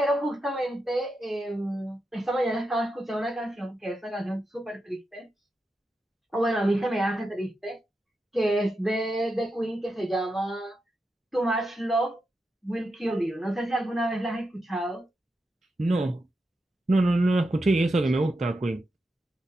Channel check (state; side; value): normal; both; correlation 0.87